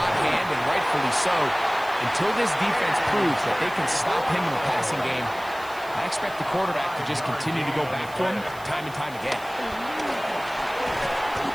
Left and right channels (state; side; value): noise; right; hiss, 21 dB below the sound